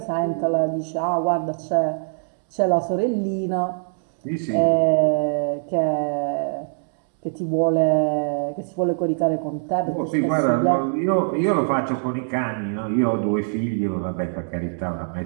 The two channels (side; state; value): left; silent; digital silence